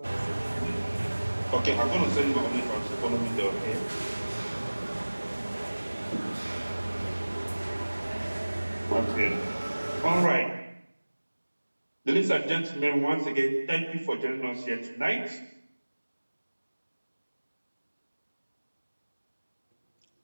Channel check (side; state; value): both; inverted; correlation -1.00